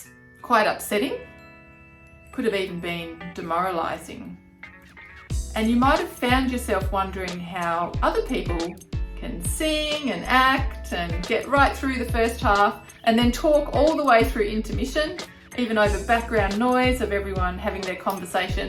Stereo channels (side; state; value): both; identical; correlation 1.00